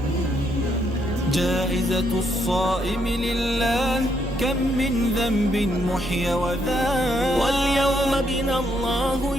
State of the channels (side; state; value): right; noise; hum, 13 dB below the sound